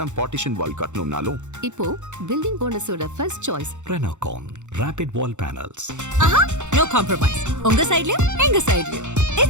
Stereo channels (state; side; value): late; left; 0.84 ms